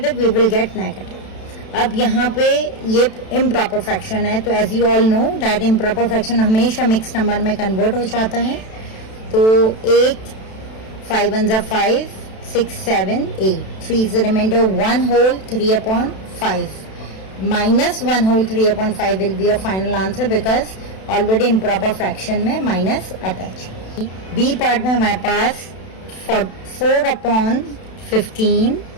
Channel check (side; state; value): right; late; 32 ms